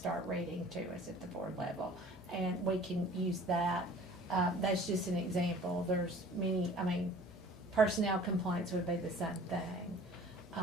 reading to us at the board level. And we can use that. That's just an example. There's many, personnel complaints would be the same thing.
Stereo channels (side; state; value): left; noise; hum, 22 dB below the sound